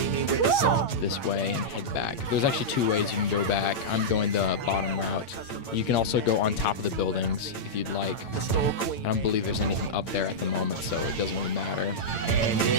this way and head back. There's actually 2 ways you can go back. I'm going the bottom route. You can also go on top of the buildings if you'd like. I don't believe there's anything up there at the moment, so it doesn't really matter.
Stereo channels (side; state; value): right; late; 8.7 ms